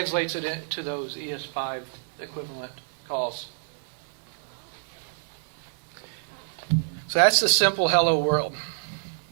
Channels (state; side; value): silent; left; digital silence